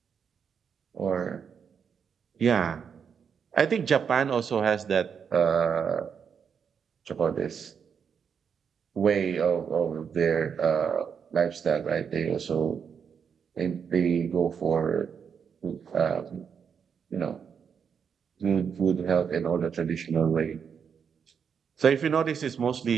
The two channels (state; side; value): quieter; left; 6.9 dB